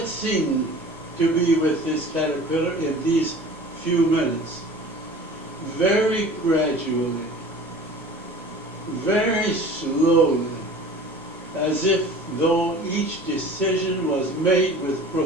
seemed to be with this caterpillar in these few minutes. Very gradually, very slowly, as if though each decision was made with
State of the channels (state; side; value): normal; both; correlation 0.42